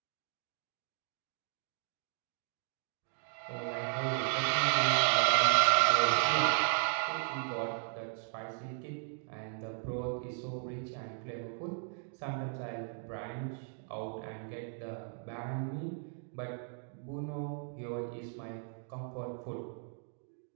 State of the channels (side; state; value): left; silent; 54 dB below the other